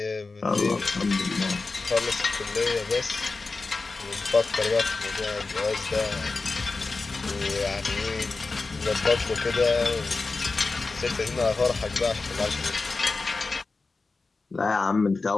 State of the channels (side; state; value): right; quieter; 3.9 dB